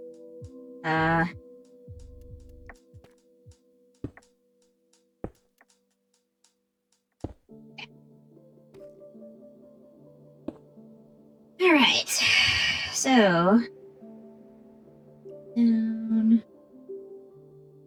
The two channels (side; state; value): both; identical; correlation 1.00